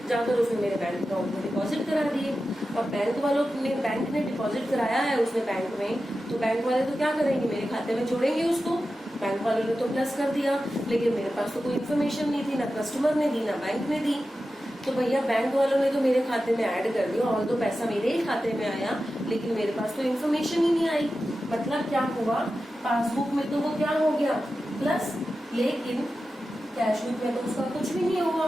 जाकर उसने मेरे बैंक अकाउंट में डिपॉजिट करा दिए। अब बैंक ने डिपॉजिट कराया है उसने बैंक में, तो बैंक वाले तो क्या करेंगे, मेरे खाते में जोड़ेंगे उसको। बैंक वालों ने तो प्लस कर दिया, लेकिन मेरे पास तो कोई इन्फॉर्मेशन नहीं थी, ना कस्टमर ने दी ना बैंक ने दी। तो भैया बैंक वालों ने तो मेरे खाते में ऐड कर दिया, और तो पैसा मेरे ही खाते में आया, लेकिन मेरे पास तो इन्फॉर्मेशन ही नहीं आई। मतलब क्या हुआ, पासबुक में तो वो क्या हो गया, प्लस, लेकिन कैश बुक में तो उसका कुछ भी नहीं हुआ।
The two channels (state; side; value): normal; both; correlation 0.92